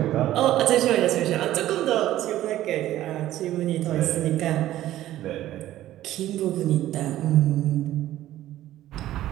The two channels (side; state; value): left; quieter; 13.9 dB